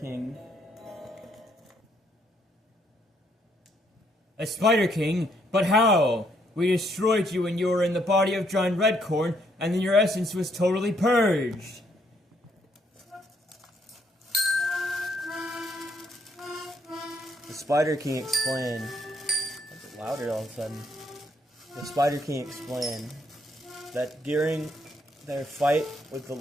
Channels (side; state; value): both; normal; correlation 0.71